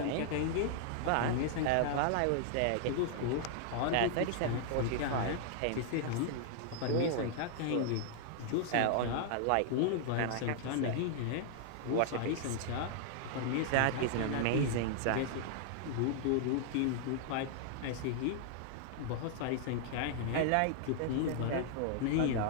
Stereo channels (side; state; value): both; different; correlation 0.00